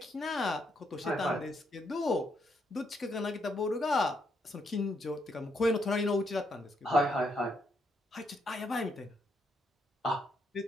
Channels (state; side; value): normal; both; correlation 0.76